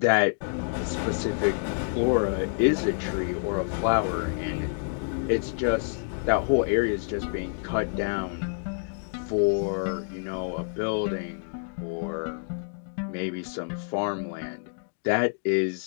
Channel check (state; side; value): silent; right; digital silence